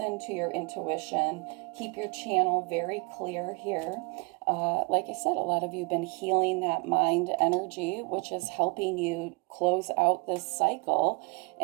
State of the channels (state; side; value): quieter; left; 30.7 dB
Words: to your intuition, keep your channel very clear here. Like I said, a lot of you have been healing that mind energy, which is helping you close out this cycle